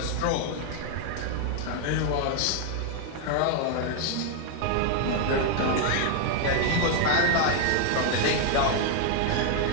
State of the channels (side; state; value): both; different; correlation 0.00